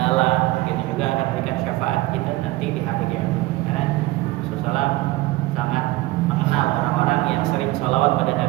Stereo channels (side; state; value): left; quieter; 18.8 dB